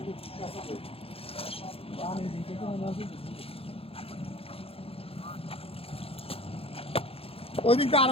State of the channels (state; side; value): late; right; 0.28 ms